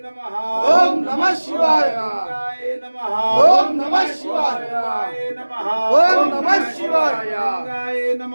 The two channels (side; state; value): both; inverted; correlation -1.00